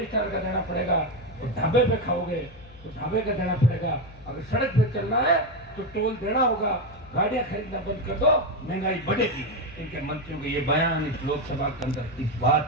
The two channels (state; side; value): noise; left; hum, 23 dB below the sound